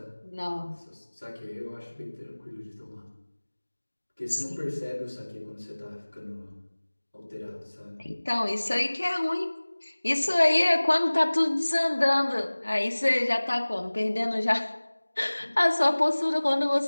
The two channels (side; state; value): both; inverted; correlation -1.00